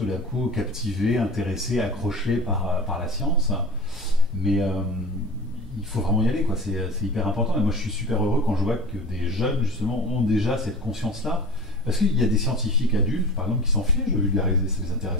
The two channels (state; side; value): normal; both; correlation 0.35